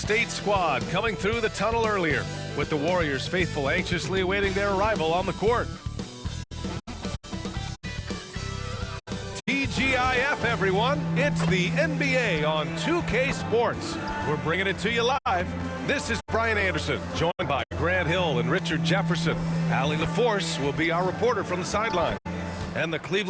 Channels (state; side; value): identical; both; correlation 1.00